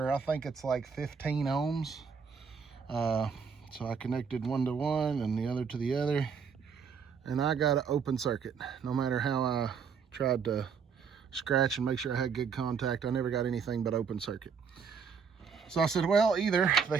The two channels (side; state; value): left; quieter; 6.2 dB